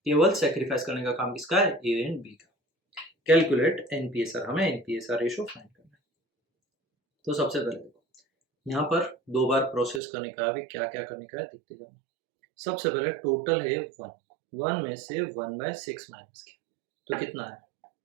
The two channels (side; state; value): left; drops out; at 10.0 s